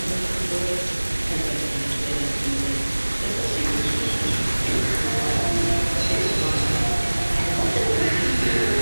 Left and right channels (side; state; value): both; inverted; correlation -1.00